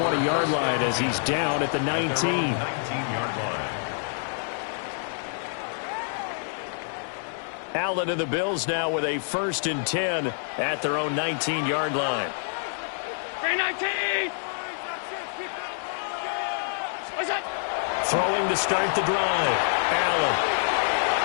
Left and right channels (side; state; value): right; silent; digital silence